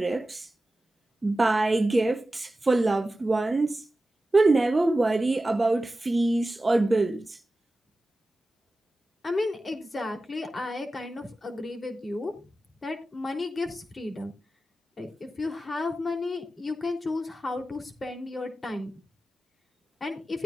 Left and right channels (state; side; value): normal; both; correlation 0.94